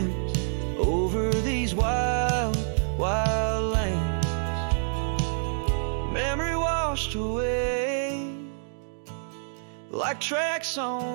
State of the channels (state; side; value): silent; left; 60 dB below the other